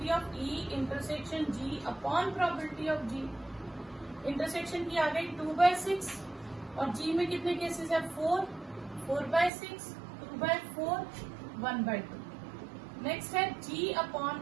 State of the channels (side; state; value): left; drops out; at 9.5 s